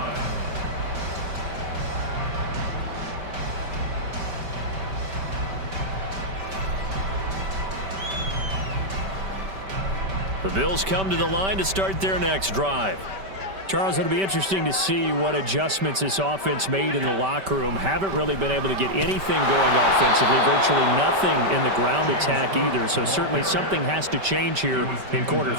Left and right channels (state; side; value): late; left; 5.2 ms